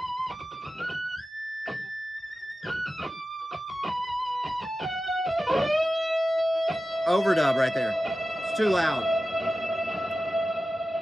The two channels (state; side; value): normal; both; correlation 0.94